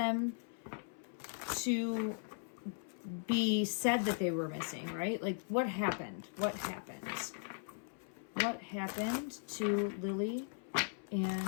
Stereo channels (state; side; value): silent; right; 52 dB below the other